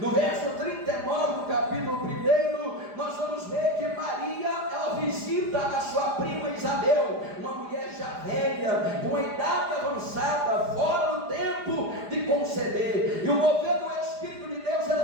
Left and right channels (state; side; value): late; left; 4.9 ms